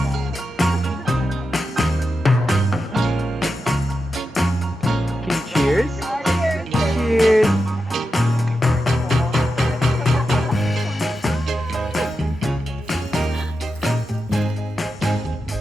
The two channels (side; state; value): both; normal; correlation 0.89